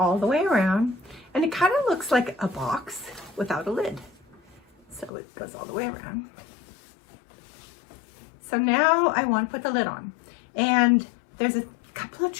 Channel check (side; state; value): right; drops out; at 5.1 s